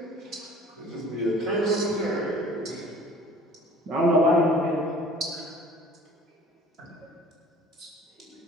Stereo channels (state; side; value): normal; both; correlation 0.49